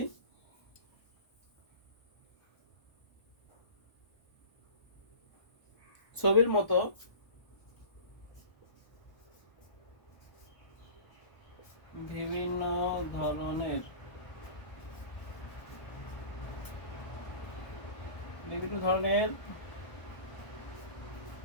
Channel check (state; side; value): late; right; 1.4 ms